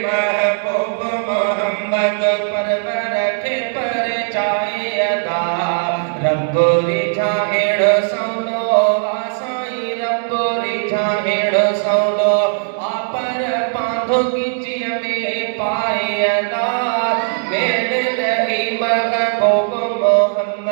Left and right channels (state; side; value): silent; left; digital silence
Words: محبوب محمد پر رکھے پر چاہے ادا رب رجھاہڑ سونو آسائی رب رجھاہڑ سونو آپر پاندھو کچی ہمیں پائے ادا میرے دلے محبوب